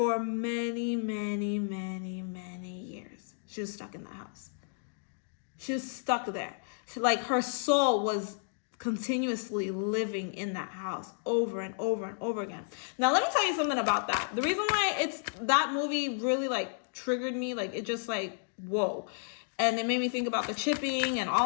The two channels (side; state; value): right; silent; digital silence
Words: many, many, many, many years. She was stuck in that house. She was stuck there. Like her soul was continuously living in that house over and over and over again. Now, let me tell you something about that. The reason why that movie really like triggered me, like it just like, whoa. And it made me think about the chipping and